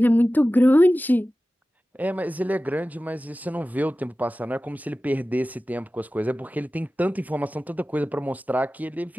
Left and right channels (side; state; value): both; normal; correlation 0.96